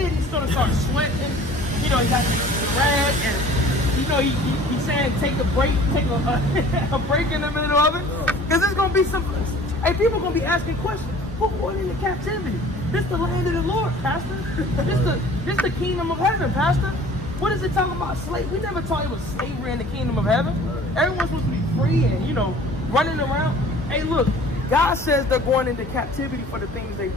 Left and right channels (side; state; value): both; normal; correlation 0.48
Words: he's gonna start sweating. You know, he got the rag, and you know he's saying take a break, take a break in the middle of it, because it's gonna be some. Hey, people gonna be asking questions. Who going into captivity? This the land of the Lord, Pastor. This the kingdom of heaven, Pastor. What is it talking about? Slave? We never taught it was slavery in the kingdom of heaven. Everyone's supposed to be free and, you know, running around. Hey, look, God says they're going into captivity for the things they've